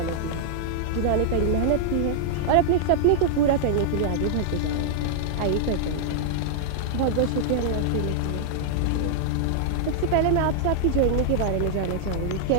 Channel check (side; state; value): both; different; correlation -0.01